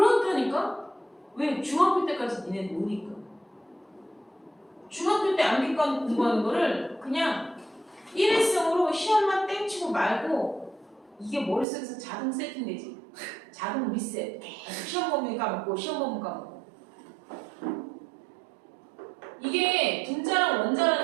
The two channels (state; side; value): drops out; left; at 11.7 s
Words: 왜? 중학교 때까지 니네 노니까. 중학교 때 암기과 공부하는 거를 그냥 일회성으로 시험만 땡치고 말고 이게 머릿속에서 자동 세팅되지. 자동 리셋. 계속 시험 범위 까먹고 시험 범위 까먹고. 이게 분자랑